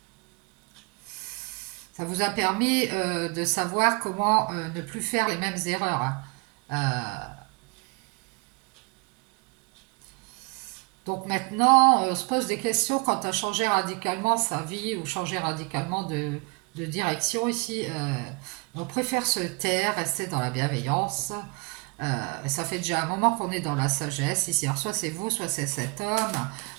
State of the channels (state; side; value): quieter; left; 30.8 dB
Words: ça vous a permis de savoir comment ne plus faire les mêmes erreurs, hein. Donc maintenant, on se pose des questions quant à changer radicalement sa vie ou changer radicalement de direction ici. On préfère se taire, rester dans la bienveillance. Ça fait déjà un moment qu'on est dans la sagesse ici. Alors soit c'est vous, soit c'est cet homme.